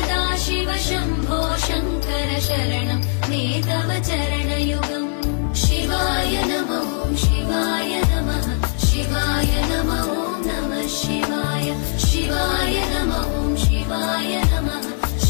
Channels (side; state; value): right; silent; 65 dB below the other